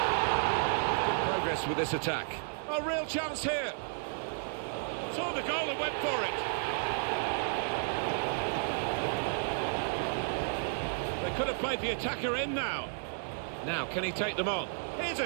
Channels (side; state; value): left; silent; 56 dB below the other